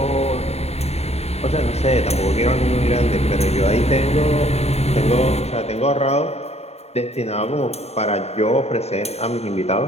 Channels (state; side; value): late; right; 0.31 ms